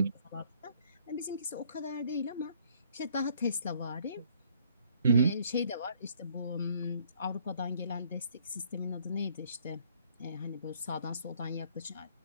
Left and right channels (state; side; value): inverted; both; correlation -0.62